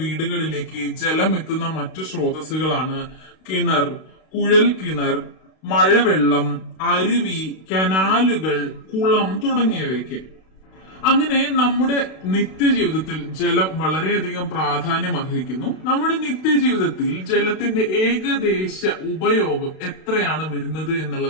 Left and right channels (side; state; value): right; late; 32 ms